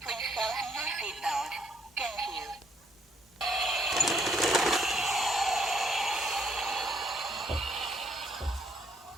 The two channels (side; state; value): both; normal; correlation 0.68